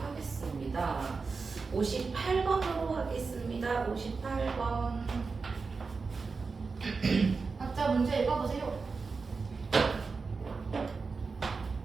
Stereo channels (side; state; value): left; quieter; 4.6 dB